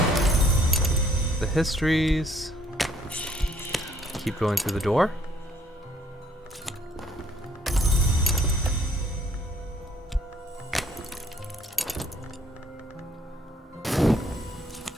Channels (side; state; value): both; normal; correlation 0.64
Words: the histories. Keep going through the door.